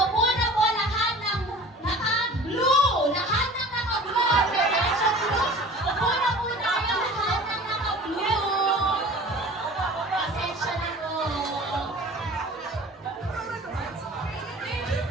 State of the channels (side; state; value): both; normal; correlation 0.42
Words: na po lahat ng naka-blue! Lahat ng naka-blue! Operation Blue! Upo na po tayo lahat ng naka-blue! Pasensya na po.